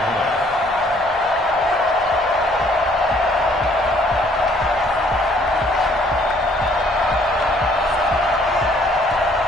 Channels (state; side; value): normal; both; correlation 0.62